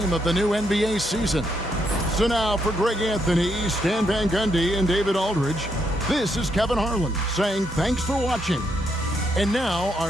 of the new NBA season. So now for Greg Anthony, Stan Van Gundy, and David Aldridge, this is Kevin Harlan saying thanks for watching. And now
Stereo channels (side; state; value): both; normal; correlation 0.77